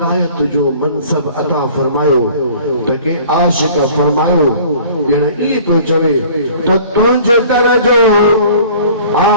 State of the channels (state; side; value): inverted; both; correlation -0.49